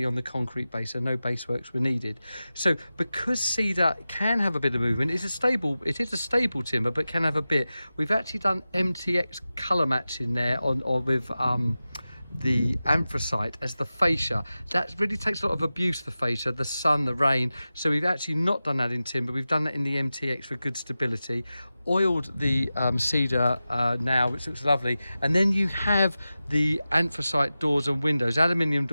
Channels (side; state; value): both; inverted; correlation -0.94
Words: on the concrete base, so no base works were needed. So because cedar can have a bit of movement, it is a stable timber, but can have a bit. We've actually done MTX colour matching there with the anthracite as the fascia. That really takes a lot of abuse, the fascia, the sun, the rain. So we've actually not done that in timber, we've done that in the MTX for good stability. Oiled the cedar now, which looks lovely, and then you have the anthracite doors and windows, aluminium